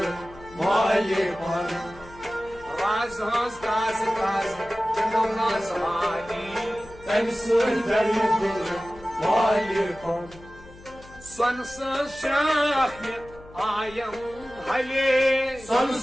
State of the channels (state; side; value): noise; left; hum, 21 dB below the sound